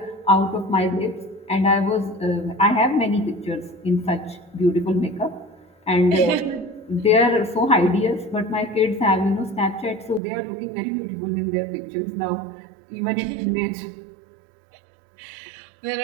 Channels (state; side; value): drops out; left; at 10.2 s